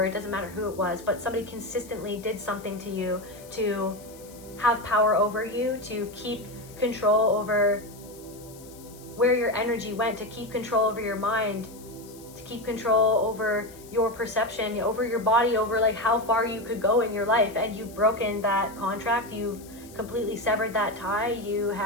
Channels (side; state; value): left; noise; hiss, 21 dB below the sound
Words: it doesn't matter who it was, but somebody consistently did something to you to have power over you, to keep control over where your energy went, to keep control over your mind, to keep control over your perception, over your body, over like how far you could go in your life. And you've broken that contract, you've completely severed that tie, you